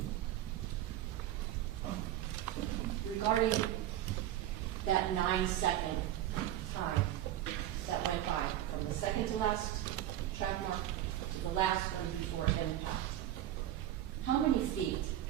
Regarding that 9-second time that went by from the second to last track mark to the last one before impact, how many feet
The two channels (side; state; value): left; quieter; 12.7 dB